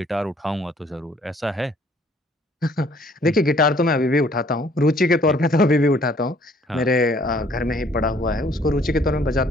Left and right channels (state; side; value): normal; both; correlation 0.60